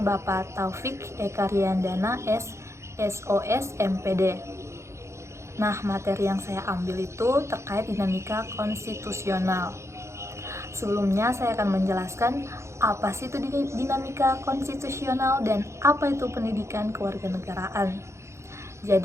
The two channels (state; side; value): late; left; 0.14 ms